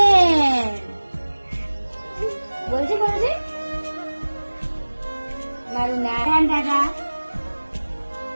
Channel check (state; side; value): inverted; both; correlation -1.00